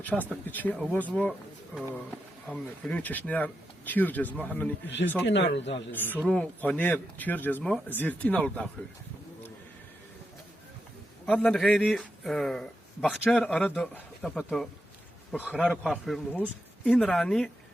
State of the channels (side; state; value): both; normal; correlation 0.86